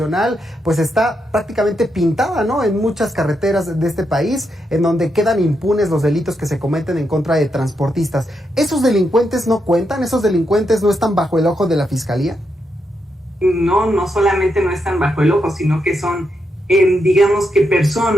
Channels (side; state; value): both; normal; correlation 0.82